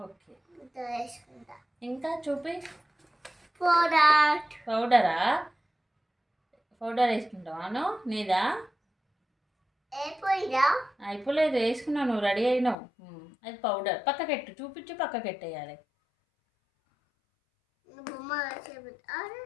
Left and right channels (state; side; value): drops out; right; at 12.8 s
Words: ఓకే, ఇంకా చూపి. పౌడరా? పౌడర్ వేసుకుంటావాను? నీదా అయిపోలేదు, వేసుకున్నావు, నువ్వు రెడీ అయినావు. అది పౌడర్ పక్కకెట్టు, చూపించి పక్కకెట్టేయాలి.